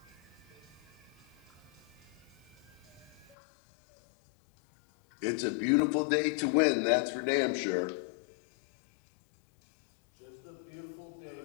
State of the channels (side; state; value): right; drops out; at 3.4 s